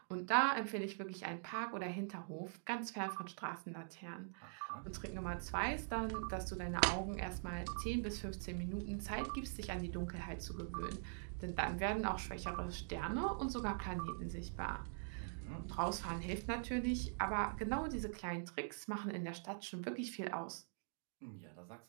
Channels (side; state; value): left; silent; digital silence